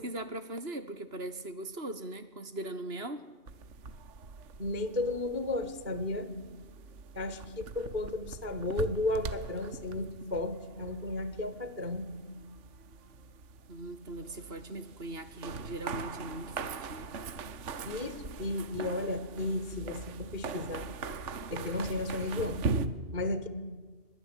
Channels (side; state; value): left; late; 2.8 ms